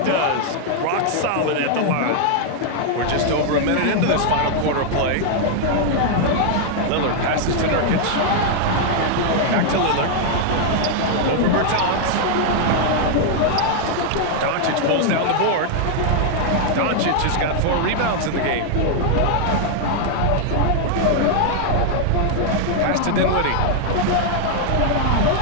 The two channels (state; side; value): different; both; correlation 0.00